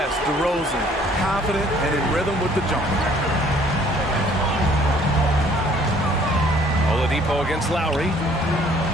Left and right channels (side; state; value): both; normal; correlation 0.59